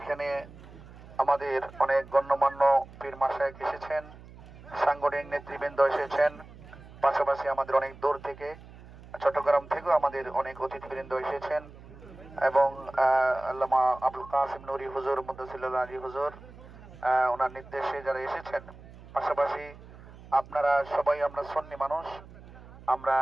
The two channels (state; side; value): noise; right; hum, 19 dB below the sound